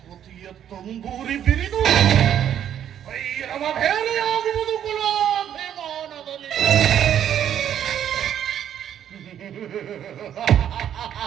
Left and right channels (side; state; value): left; quieter; 10.0 dB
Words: ತಂಬೂರಿ ಬಿರಿದು ಭೈರವ ಭೇರಿಯಾಗುವುದು ಕುಲಾಭಿಮಾನದಲ್ಲಿ